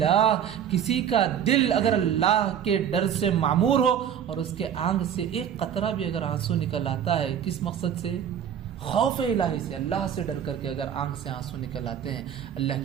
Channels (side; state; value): left; quieter; 9.1 dB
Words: کسی کا دل اگر اللہ کے ڈر سے معمور ہو اور اس کے آنکھ سے ایک قطرہ بھی اگر آنسو نکل آتا ہے، کس مقصد سے؟ خوف الہی سے، اللہ سے ڈر کر کے اگر آنکھ سے آنسو نکل آتے ہیں، اللہ